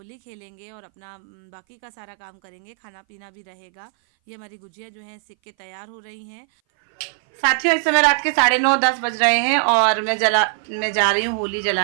खेलेंगे और अपना बाकी का सारा काम करेंगे, खाना पीना भी रहेगा। ये हमारी गुजिया जो है सिक के तैयार हो रही हैं। साथियों, इस समय रात के 9:30 बज रहे हैं, और मैं जा रही हूँ होली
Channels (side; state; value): left; silent; 59 dB below the other